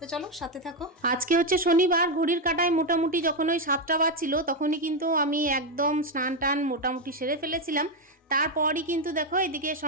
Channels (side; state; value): both; normal; correlation 0.06